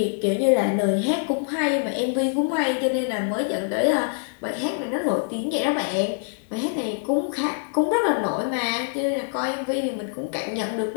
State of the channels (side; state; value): right; silent; digital silence